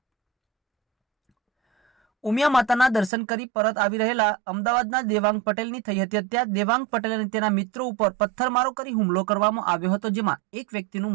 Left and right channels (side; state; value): left; drops out; at 3.1 s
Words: ઉમિયા માતાના દર્શન કરી પરત આવી રહેલા અમદાવાદના દેવાંગ પટેલની થઈ હતી હત્યા। દેવાંગ પટેલ અને તેના મિત્રો ઉપર પથ્થરમારો કરી હુમલો કરવામાં આવ્યો હતો, જેમાં એક વ્યક્તિનું